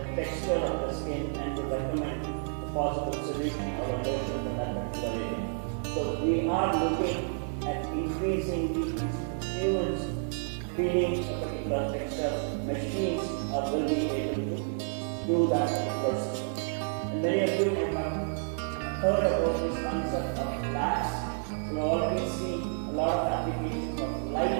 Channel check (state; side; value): silent; left; 58 dB below the other